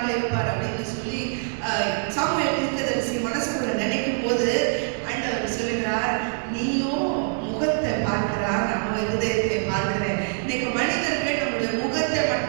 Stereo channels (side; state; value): left; silent; 62 dB below the other